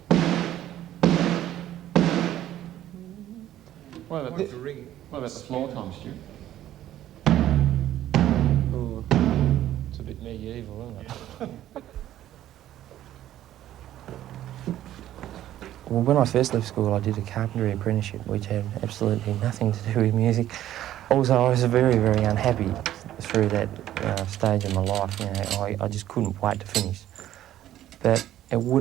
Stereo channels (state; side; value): quieter; left; 12.7 dB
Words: What about the floor tom, Stu? Ooh, it's a bit medieval, isn't it? Well, when I first left school, I did a carpentry apprenticeship, which had absolutely nothing to do with music. Also, I was very, very unhappy through that stage of my life. I just couldn't wait to finish. But it would